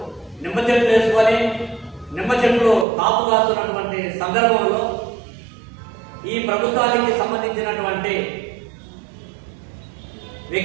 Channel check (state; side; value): drops out; left; at 2.9 s